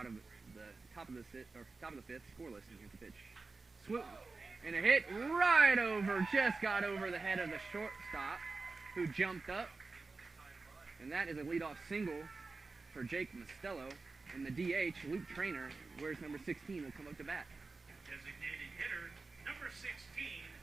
of the top of the 5th, scoreless, and here's the pitch. Swoop, and a hit right over, just got over the head of the shortstop, who jumped up, and that is a leadoff single for Jake Mastillo. And the DH, Luke Trainer, wears number 16, will come up to bat. Designated hitter, number 16,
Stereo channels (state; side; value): quieter; left; 3.9 dB